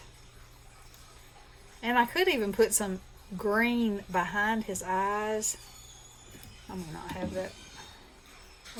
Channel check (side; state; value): both; identical; correlation 1.00